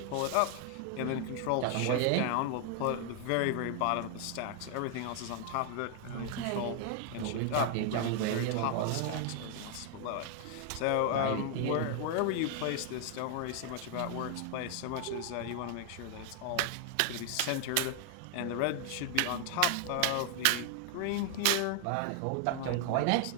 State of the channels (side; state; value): both; different; correlation 0.00